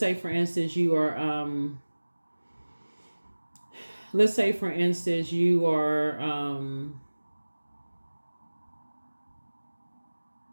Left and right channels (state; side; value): inverted; both; correlation -1.00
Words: for instance you are let's say for instance you are